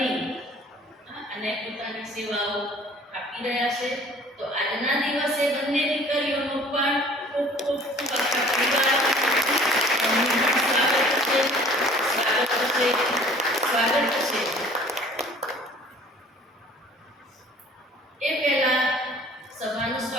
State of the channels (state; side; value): normal; both; correlation 0.51